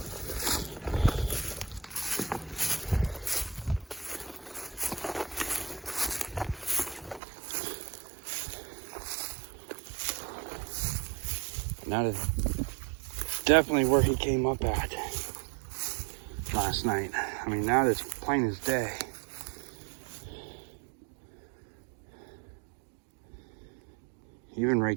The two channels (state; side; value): drops out; left; at 7.2 s